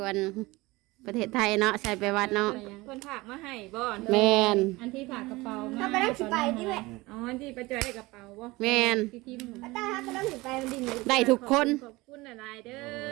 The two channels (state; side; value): quieter; left; 21.5 dB